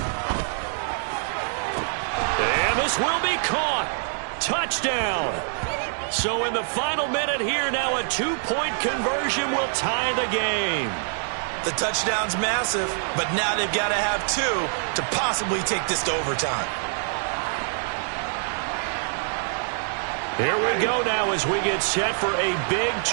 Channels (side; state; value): left; silent; digital silence